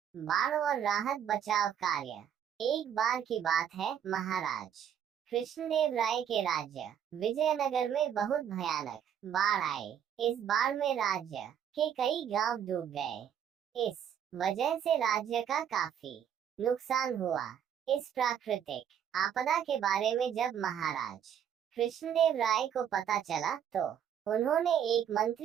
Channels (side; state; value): left; quieter; 9.1 dB